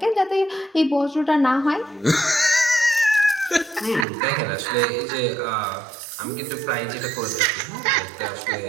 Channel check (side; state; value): left; drops out; at 4.0 s